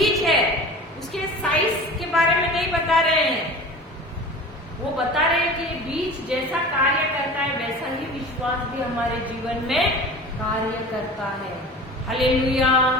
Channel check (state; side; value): normal; both; correlation 0.37